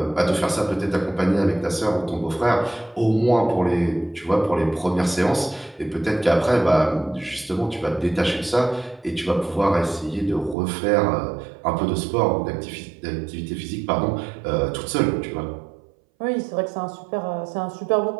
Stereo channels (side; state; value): left; drops out; at 10.6 s